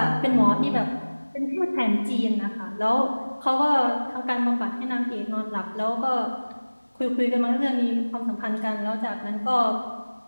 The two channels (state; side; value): inverted; both; correlation -1.00